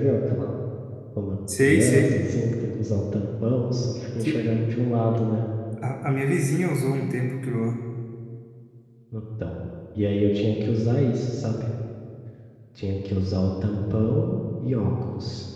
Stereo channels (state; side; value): identical; both; correlation 1.00